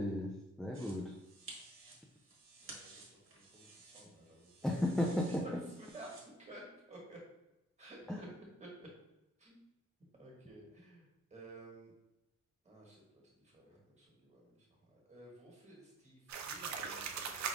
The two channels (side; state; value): both; normal; correlation 0.64